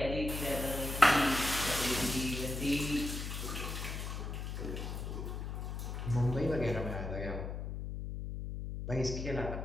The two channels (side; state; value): left; noise; hum, 5 dB below the sound